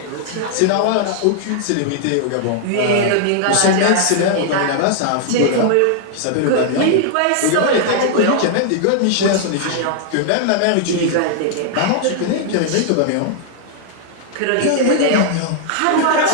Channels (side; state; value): both; different; correlation -0.01